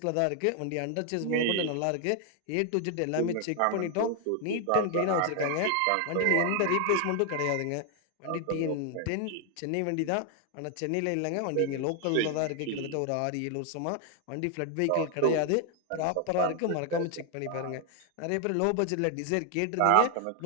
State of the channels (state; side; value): different; both; correlation 0.00